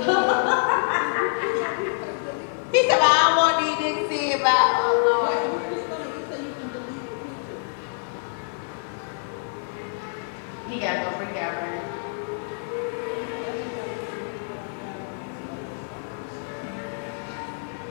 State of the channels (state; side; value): silent; right; 61 dB below the other